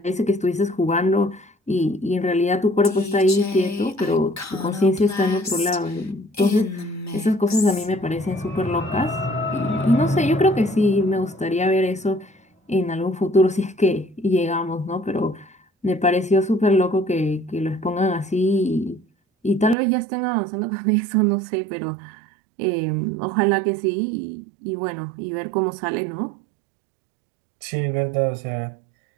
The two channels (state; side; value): drops out; left; at 19.8 s